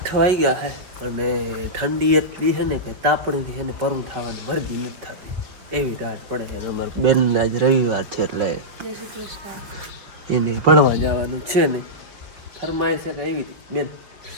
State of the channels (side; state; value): left; late; 5.6 ms